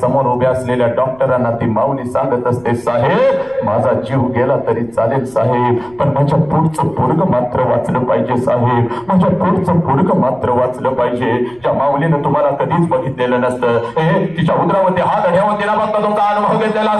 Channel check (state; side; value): noise; right; rumble, 28 dB below the sound